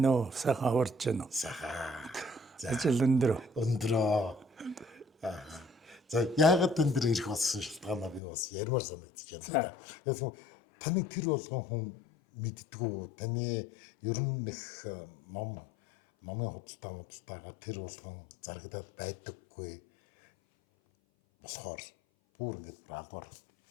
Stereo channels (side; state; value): right; drops out; at 8.2 s